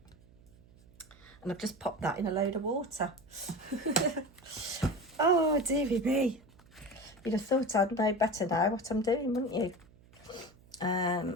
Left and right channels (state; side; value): noise; right; hum, 26 dB below the sound